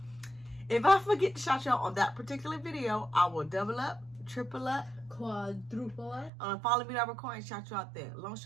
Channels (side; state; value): left; drops out; at 6.3 s